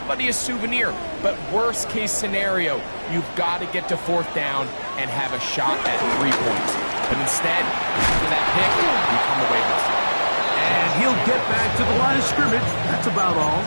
a souvenir. But worst case scenario, you've got to get to 4th down and have a shot at 3 points. But instead, after that pick, you come away with it. And he'll get back to the line of scrimmage. That's about all.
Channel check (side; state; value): both; inverted; correlation -1.00